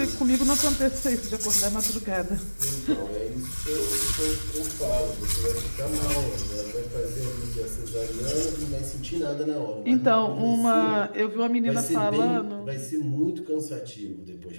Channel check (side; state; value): both; inverted; correlation -1.00